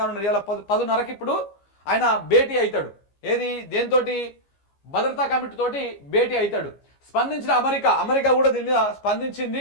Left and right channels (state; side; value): late; right; 15 ms